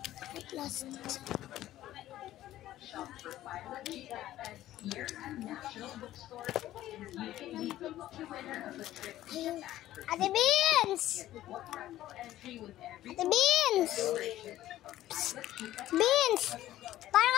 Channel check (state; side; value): quieter; right; 14.0 dB